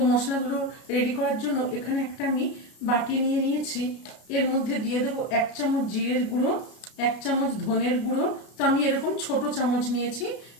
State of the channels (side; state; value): right; late; 32 ms